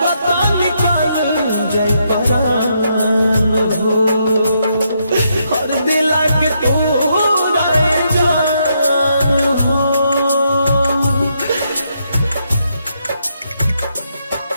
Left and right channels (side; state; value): both; inverted; correlation -0.78